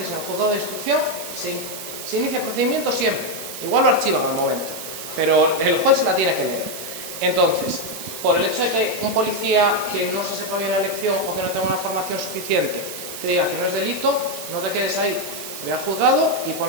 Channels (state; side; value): noise; right; hiss, 9 dB below the sound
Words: en el juzgado de instrucción, se inicia el procedimiento siempre. Igual lo archivan al momento, pero el juez se la tiene que leer. Entonces, por el hecho de que un policía que no se sepa bien la lección o que no tenga una formación suficiente te diga que no es delito, no te quedes ahí. Ve al juzgado y